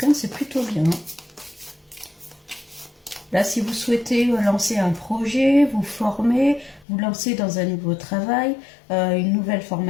c'est plutôt bien. Hein. Là, si vous souhaitez lancer un projet, vous former, vous lancer dans un nouveau travail, une nouvelle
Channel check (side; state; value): right; drops out; at 6.9 s